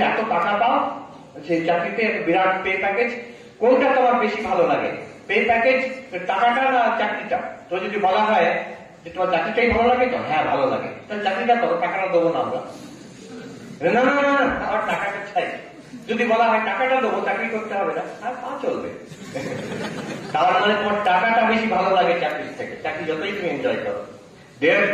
এত টাকা পাও সেই চাকরিতে, বিরাট পে প্যাকেজ, কোনটা তোমার বেশি ভালো লাগে? পে প্যাকেজ, টাকাটা না চাকরিটা? তো যদি বলা হয় যে তোমার চাকরিটাই ভালো লাগে, তো হ্যাঁ ভালো লাগে, তাহলে চাকরিটা করো, টাকাটা দেবো না আমরা। না না না, আমার টাকাটা চাই। যদি বলা হয় টাকাটা দেবো, চাকরি করতে হবে না, আর তা চলবে। তার মানে তোমার টাকাটা বেশি ভালো লাগে চাকরির থেকে, চাকরি যতই তুমি এনজয় করো।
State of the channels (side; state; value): both; identical; correlation 1.00